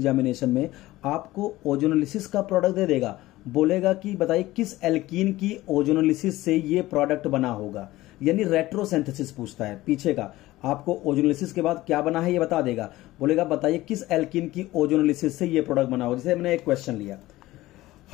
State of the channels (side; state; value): right; quieter; 17.4 dB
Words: में, आपको ओजोनोलिसिस का प्रोडक्ट दे देगा, बोलेगा कि बताइए किस एल्कीन की ओजोनोलिसिस से ये प्रोडक्ट बना होगा, यानी रेट्रोसिंथेसिस पूछता है पीछे का, आपको ओजोनोलिसिस के बाद क्या बना है ये बता देगा, बोलेगा बताइए किस एल्कीन की ओजोनोलिसिस से ये प्रोडक्ट बना होगा। जैसे मैंने एक क्वेश्चन लिया,